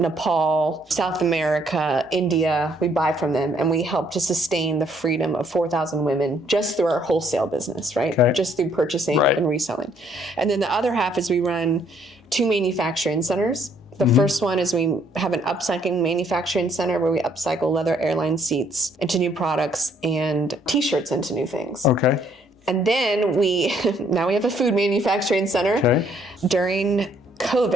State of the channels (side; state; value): both; normal; correlation 0.66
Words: South America, India, we buy from them, and we help to sustain the freedom of 4,000 women just through our wholesale business, right? Okay. Just through purchasing and reselling. And then the other half is we run 2 manufacturing centers. The first one is we have an upcycling manufacturing center where we upcycle leather airline seats into new products and t-shirts into new things. Okay. And then now we have a food manufacturing center. Okay. During